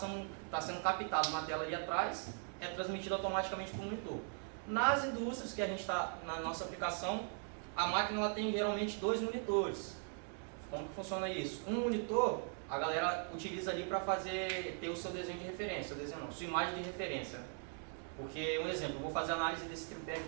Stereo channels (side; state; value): left; silent; 51 dB below the other